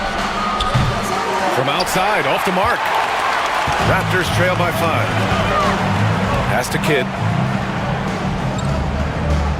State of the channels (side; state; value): both; identical; correlation 1.00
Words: From outside, off the mark. Raptors trail by 5. Pass to Kidd.